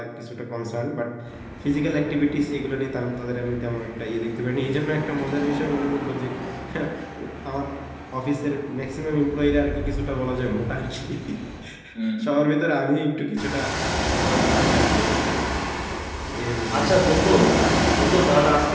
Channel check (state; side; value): identical; both; correlation 1.00